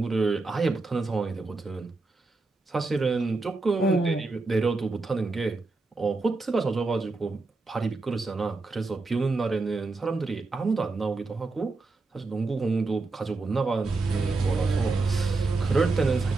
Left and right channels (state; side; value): quieter; left; 3.6 dB